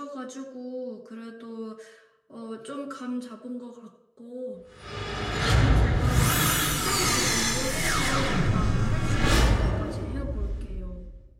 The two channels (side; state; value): both; identical; correlation 1.00